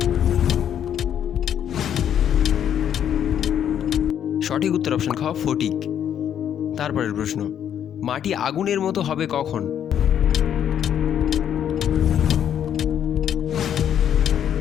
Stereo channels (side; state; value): right; quieter; 9.5 dB